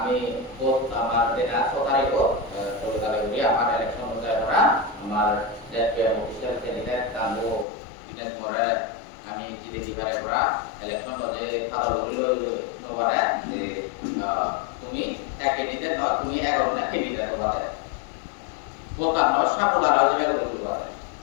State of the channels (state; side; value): drops out; right; at 7.7 s